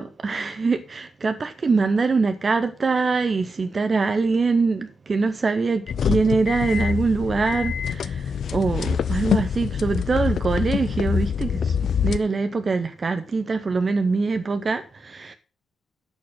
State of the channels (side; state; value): both; normal; correlation 0.86